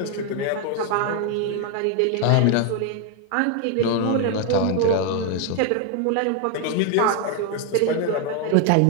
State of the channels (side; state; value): both; different; correlation 0.01